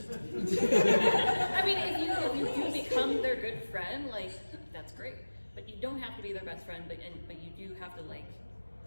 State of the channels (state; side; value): inverted; both; correlation -1.00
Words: I mean, if you do become their good friend, like that's great. But you don't have to be their best friend. But you do have to like